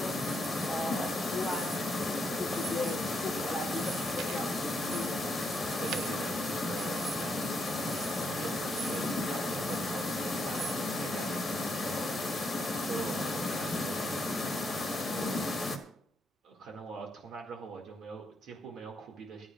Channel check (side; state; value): both; normal; correlation 0.78